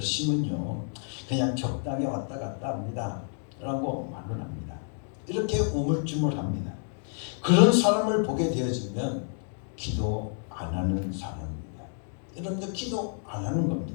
그냥 적당히 왔다 갔다 합니다 라고 말을 합니다. 이렇게 우물쭈물합니다. 그런 사람을 보게 되어지면 기도 안 하는 사람입니다. 여러분들 기도 안 하는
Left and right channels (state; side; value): silent; right; 58 dB below the other